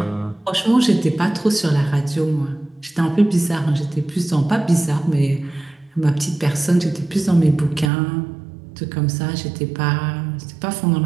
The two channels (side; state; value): left; drops out; at 7.9 s